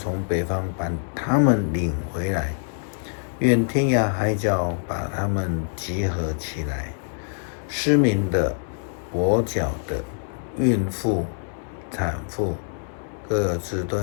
北方把他们领回来，愿天涯海角把他们集合起来。失明的、跛脚的、孕妇、产妇，各自都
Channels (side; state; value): right; silent; digital silence